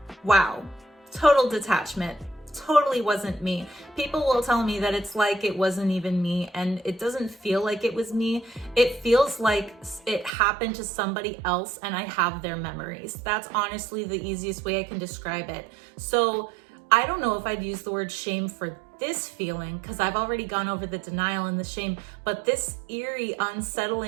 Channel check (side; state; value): left; drops out; at 10.3 s